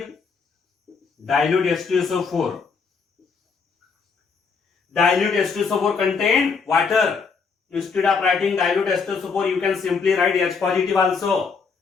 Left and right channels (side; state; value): right; quieter; 5.2 dB